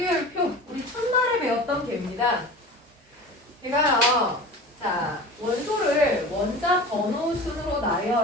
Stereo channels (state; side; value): normal; both; correlation 0.36